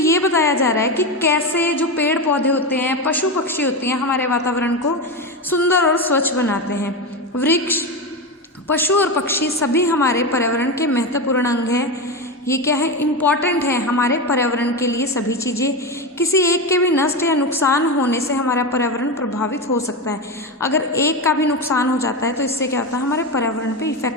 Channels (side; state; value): both; normal; correlation 0.17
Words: बताया जा रहा है कि कैसे जो पेड़ पौधे होते हैं, पशु पक्षी होते हैं, हमारे वातावरण को सुंदर और स्वच्छ बनाते हैं। वृक्ष, पशु और पक्षी सभी हमारे पर्यावरण के महत्वपूर्ण अंग हैं। ये क्या है? इम्पॉर्टेंट है हमारे पर्यावरण के लिए। सभी चीज़ें, किसी एक के भी नष्ट या नुकसान होने से हमारा पर्यावरण प्रभावित हो सकता है। अगर एक का भी नुकसान हो जाता है तो इससे क्या होता है? हमारे पर्यावरण पे